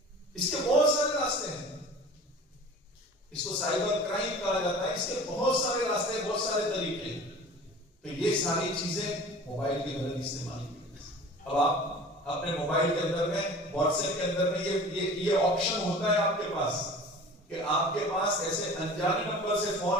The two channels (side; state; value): both; normal; correlation 0.41